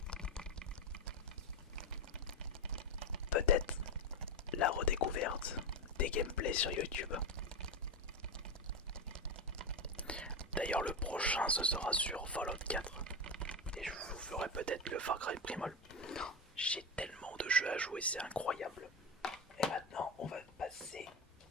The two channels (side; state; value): both; normal; correlation 0.15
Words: Peut-être la redécouverte des gameplays sur YouTube. D'ailleurs, le prochain, ce sera sur Fallout 4. Et je vous ferai peut-être le Far Cry Primal. J'ai tellement de jeux à jouer, c'est incroyable. Et maintenant, on va passer